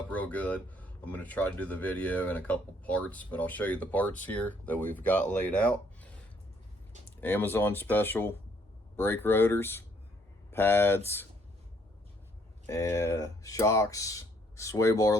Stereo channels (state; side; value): normal; both; correlation 0.66